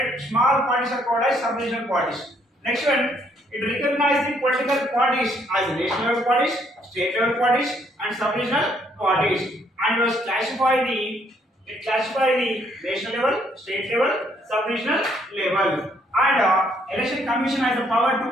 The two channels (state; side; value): normal; both; correlation 0.68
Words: Small parties are called as sub-regional parties. Next one, it recognizes the political parties as national level parties, state level parties, and sub-regional parties, and was classified the national level, state level, sub-regional level. And Election Commission has the power to